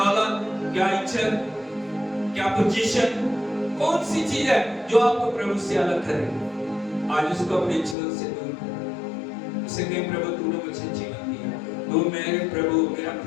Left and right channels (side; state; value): right; drops out; at 8.0 s